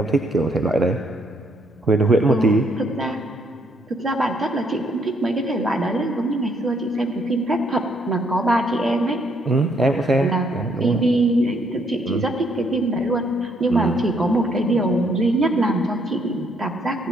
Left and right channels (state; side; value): normal; both; correlation 0.70